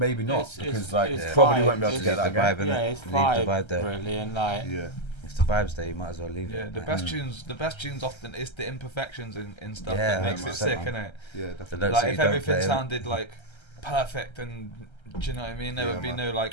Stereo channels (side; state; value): right; late; 1.3 ms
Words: not, because probably won't be able to get that again. It's Leave the vibe there. really, and like if the vibe's there, you might as well leave it. The best tunes often it's the imperfections in stuff Yeah, that makes it sick, man. innit? Yeah, The definitely. notes Like that if you don't everything play, sounded like perfect and do you know what I mean? There would be